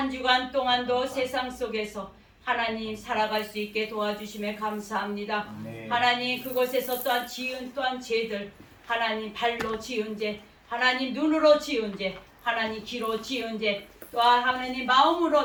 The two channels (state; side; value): identical; both; correlation 1.00